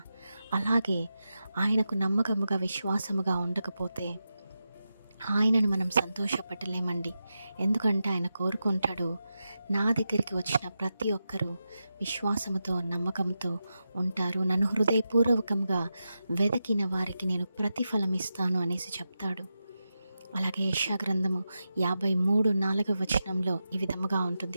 అలాగే ఆయనకు నమ్మకముగా విశ్వాసముగా ఉండకపోతే ఆయనను మనం సంతోషపడలేమండి. ఎందుకంటే ఆయన కోరుకుంటాడు, నా దగ్గరికి వచ్చిన ప్రతి ఒక్కరూ విశ్వాసముతో నమ్మకంతో ఉంటారు, నన్ను హృదయపూర్వకంగా వెదకిన వారికి నేను ప్రతిఫలం ఇస్తాను అనేసి చెప్తాడు. అలాగే యెషయా గ్రంథము 53:4 ఈ విధముగా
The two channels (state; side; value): inverted; both; correlation -0.90